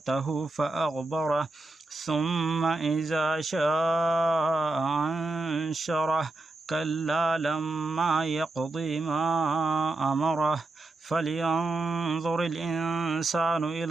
فأغبره ثم إذا شاء أنشره كلا لما يقضي ما أمره فلينظر الإنسان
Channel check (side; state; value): left; quieter; 3.1 dB